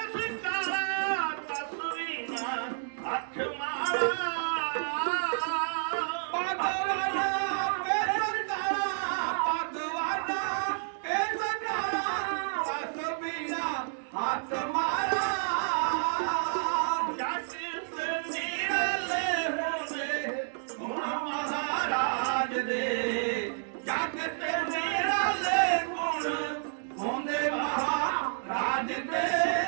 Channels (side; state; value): left; silent; digital silence